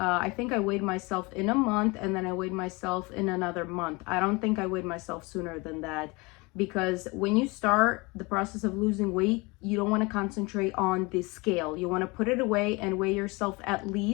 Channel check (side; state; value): right; quieter; 25.9 dB